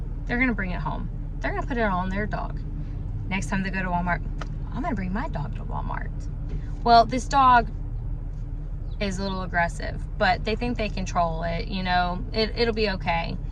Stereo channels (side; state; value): both; identical; correlation 1.00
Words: They're going to bring it home. They're going to put it on their dog. Next time they go to Walmart, I'm going to bring my dog to Walmart. Well, this dog is a little aggressive, but they think they control it. You know, it'll be okay.